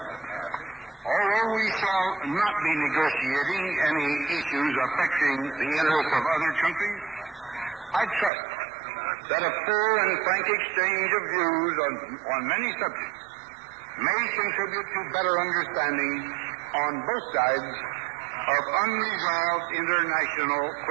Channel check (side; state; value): left; drops out; at 8.3 s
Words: Although we shall not be negotiating any issues affecting the interests of other countries, I trust that a full and frank exchange of views on many subjects may contribute to better understanding on both sides of unresolved international